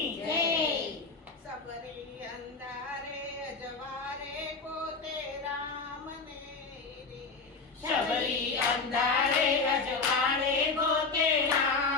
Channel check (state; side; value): quieter; right; 4.3 dB